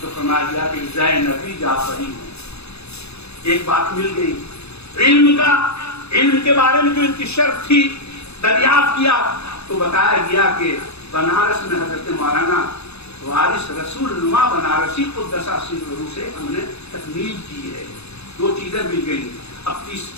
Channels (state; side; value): late; right; 0.79 ms